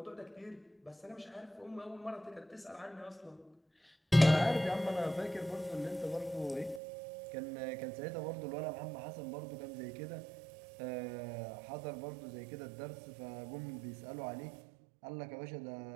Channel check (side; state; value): left; drops out; at 6.8 s